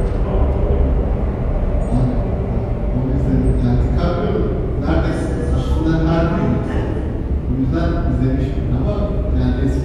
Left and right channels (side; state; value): both; identical; correlation 1.00